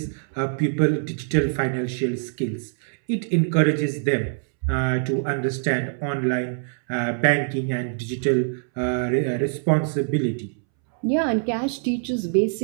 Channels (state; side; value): silent; left; 63 dB below the other